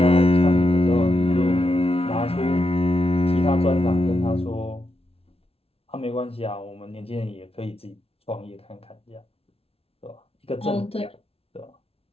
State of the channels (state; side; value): late; right; 0.28 ms